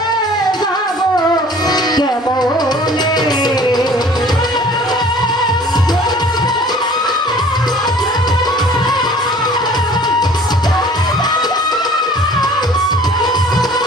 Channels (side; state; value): both; normal; correlation 0.50